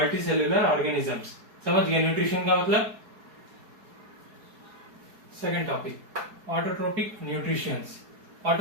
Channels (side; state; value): left; late; 4.7 ms